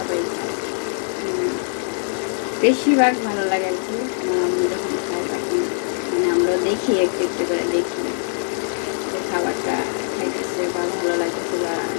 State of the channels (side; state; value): right; silent; 64 dB below the other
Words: খায়। বেশিরভাগ ভালো লাগে আর কি। আমার আম্মু যখন খায় তখন মানে আমরা দেখি, একটু একটু করে দেখি যে খাবারটা খাইতেছে বা ভালো লাগতেছে, বা